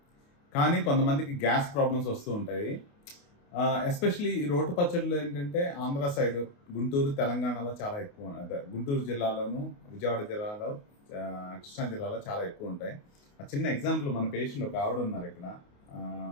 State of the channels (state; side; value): late; right; 28 ms